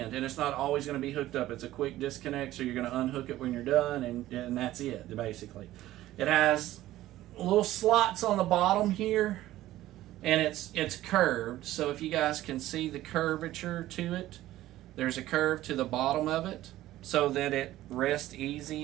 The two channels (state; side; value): quieter; left; 15.0 dB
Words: and it's not always going to be hooked up. It's a quick disconnect, so you're going to unhook it when you're done, and that's it, basically. It has little slots on the bottom here, and it's curved, so if you guys can see the curvature to it, there's a curve to the bottom of it so that it rests